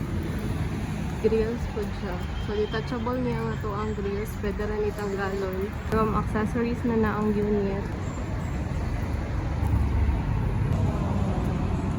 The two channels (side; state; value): both; identical; correlation 1.00